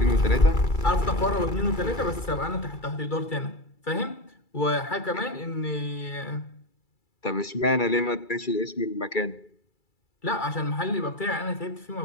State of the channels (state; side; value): late; right; 2.3 ms